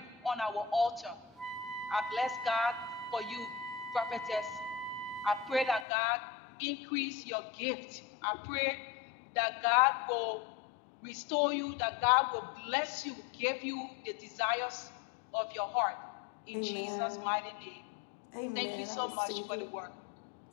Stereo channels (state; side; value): drops out; right; at 5.9 s